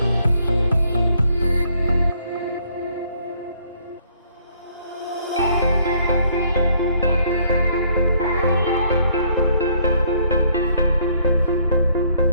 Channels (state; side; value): inverted; both; correlation -0.65